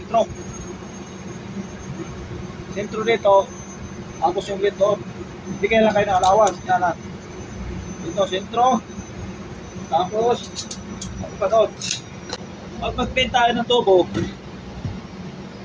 Sentro dito, tapos yung lid doon. Hindi kayo lang kayo ng allowance. Yan na. Dito, sentro. Tapos, ano pa doon? Pag mag-pin tayo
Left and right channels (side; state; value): both; identical; correlation 1.00